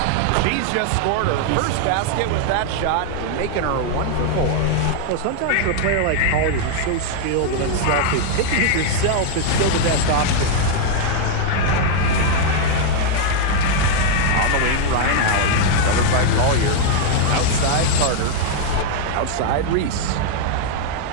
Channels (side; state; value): both; different; correlation 0.00